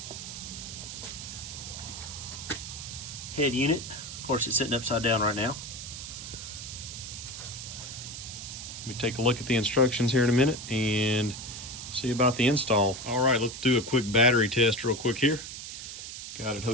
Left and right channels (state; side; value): noise; right; hiss, 9 dB below the sound